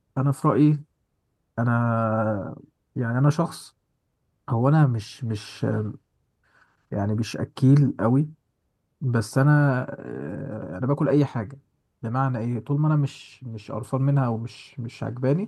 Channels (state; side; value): identical; both; correlation 1.00